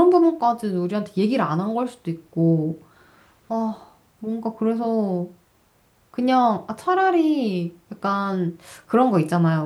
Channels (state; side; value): identical; both; correlation 1.00